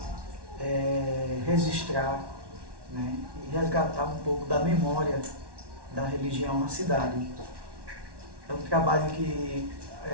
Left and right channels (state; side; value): late; left; 1.1 ms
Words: registrar, né, e resgatar um pouco da memória da religião na cidade. É um trabalho que